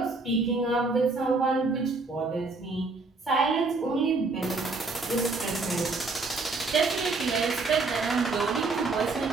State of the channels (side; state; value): left; quieter; 3.7 dB